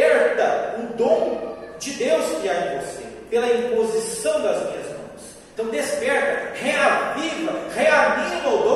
o dom de Deus que há em você, pela imposição das minhas mãos. Então desperta, reaviva, reanima o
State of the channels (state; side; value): identical; both; correlation 1.00